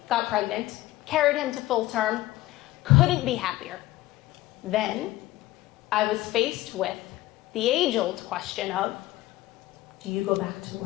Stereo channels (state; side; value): quieter; right; 16.8 dB